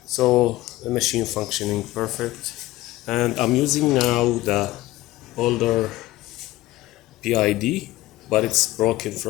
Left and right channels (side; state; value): right; quieter; 17.3 dB